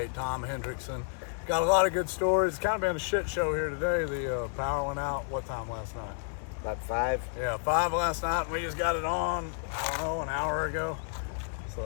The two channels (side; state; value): right; silent; 57 dB below the other